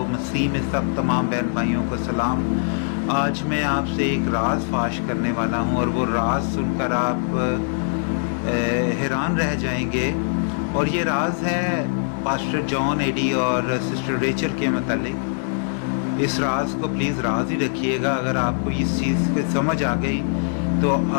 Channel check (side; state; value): right; silent; digital silence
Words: मसीह में सब तमाम बहन भाइयों को सलाम। आज मैं आपसे एक राज फाश करने वाला हूँ और वो राज सुनकर आप हैरान रह जाएंगे। और ये राज है पास्टर जॉन एडी और सिस्टर रेचल के मतलब। इस राज को प्लीज़ राज ही रखिएगा। अगर आपको इस चीज़ की समझ आ गई तो